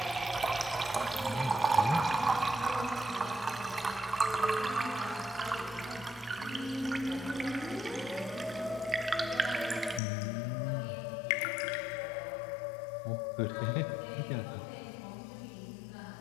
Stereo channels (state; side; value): drops out; right; at 10.0 s